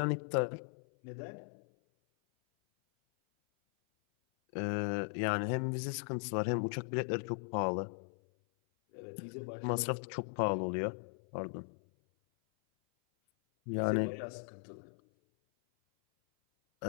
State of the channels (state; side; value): silent; right; 53 dB below the other